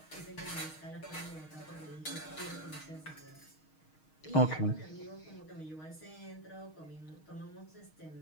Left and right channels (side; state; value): right; late; 6.4 ms